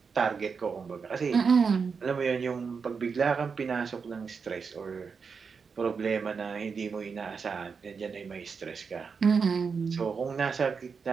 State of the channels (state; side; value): quieter; left; 5.6 dB